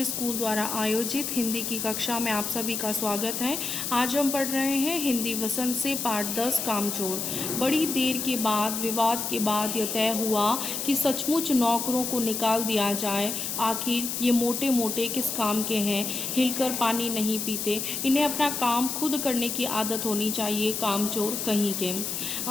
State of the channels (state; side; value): noise; left; hiss, 3 dB below the sound